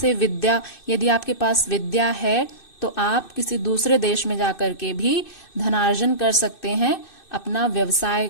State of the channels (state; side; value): late; right; 2.6 ms